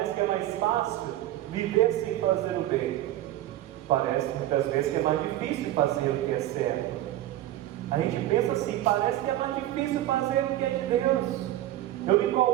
que é mais fácil viver sem fazer o bem. Parece muitas vezes que é mais difícil fazer o que é certo. A gente pensa assim, parece que é mais difícil fazer o que é de Deus. Eu me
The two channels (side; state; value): left; quieter; 14.1 dB